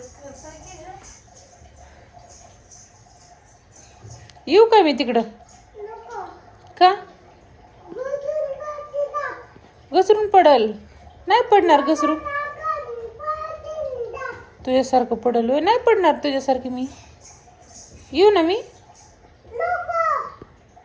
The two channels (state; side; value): identical; both; correlation 1.00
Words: येऊ का मी तिकडं? का? घसरून पडल? नाही पडणार घसरून. तुझ्यासारखं पडल होय? नाही पडणार तुझ्यासारखी मी. येऊ ना मी?